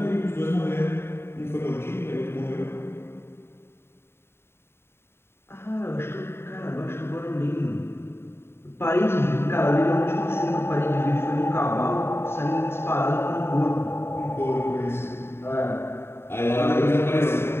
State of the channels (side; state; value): right; late; 0.11 ms